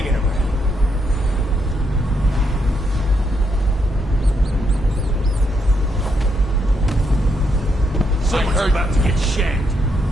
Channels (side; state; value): both; normal; correlation 0.78